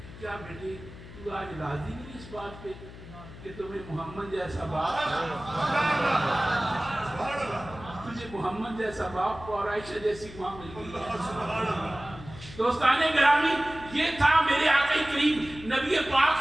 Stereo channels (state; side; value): noise; left; hum, 16 dB below the sound